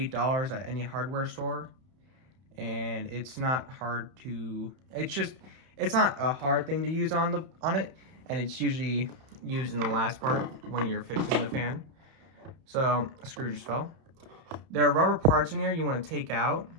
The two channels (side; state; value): left; late; 31 ms